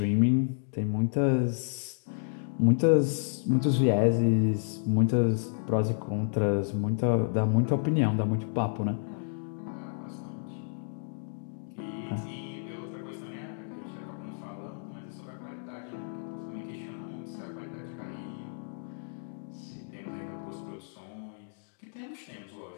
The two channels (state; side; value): silent; right; digital silence